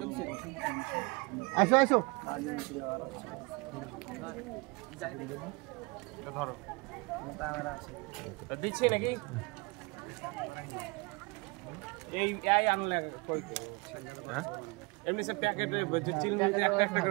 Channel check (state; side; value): quieter; left; 27.7 dB